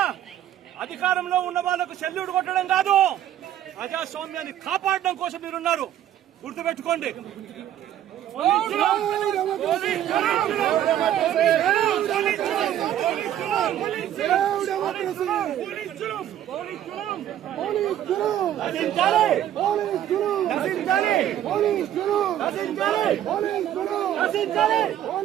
అధికారంలో ఉన్న వాళ్లకు సెల్యూట్ కొట్టడం కాదు, ప్రజాస్వామ్యాన్ని కాపాడడం కోసం మీరున్నారు. గుర్తుపెట్టుకోండి.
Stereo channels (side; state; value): left; quieter; 11.5 dB